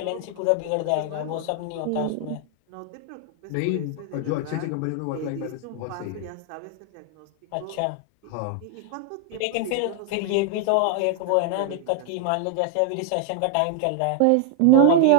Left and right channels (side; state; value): both; different; correlation 0.00